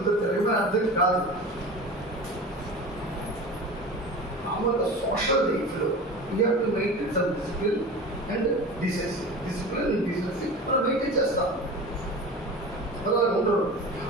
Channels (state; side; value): normal; both; correlation 0.33